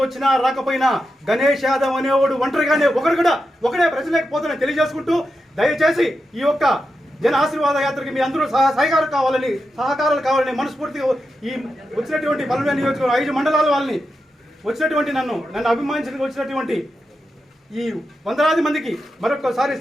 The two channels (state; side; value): normal; both; correlation 0.88